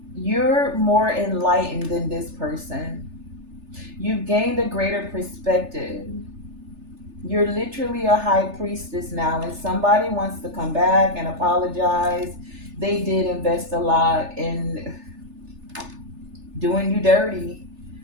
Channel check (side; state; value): left; late; 3.3 ms